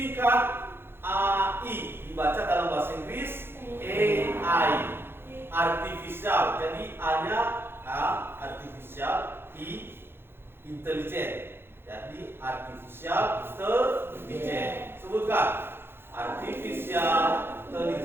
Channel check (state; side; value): late; left; 0.11 ms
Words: AI, dibaca dalam bahasa Inggris AI. Artificial, jadi A-nya artificial, intelligent. Jadi artificial intelligence. Sebutkan artificial